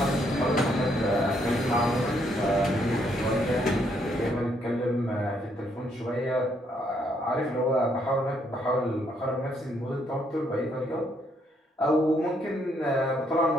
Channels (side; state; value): both; normal; correlation 0.72